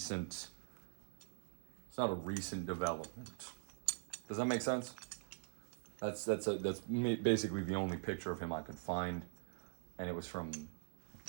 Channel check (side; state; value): left; silent; digital silence